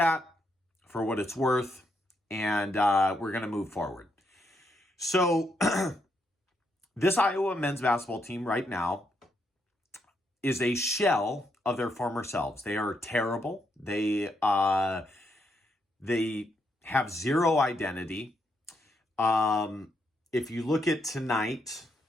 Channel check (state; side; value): normal; both; correlation 0.78